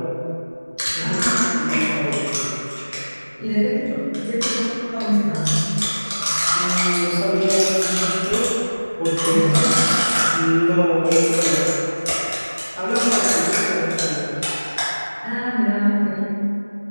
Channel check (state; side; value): inverted; both; correlation -1.00